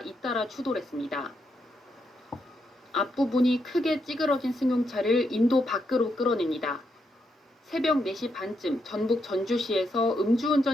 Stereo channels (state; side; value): normal; both; correlation 0.80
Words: 잇따라 추돌했습니다. 앞부분이 크게 찌그러진 승용차를 인도 밖으로 끌어냅니다. 새벽 4시 반쯤 전북 전주시에서